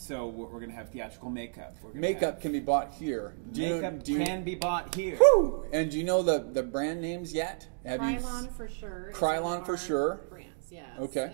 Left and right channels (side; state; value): left; silent; digital silence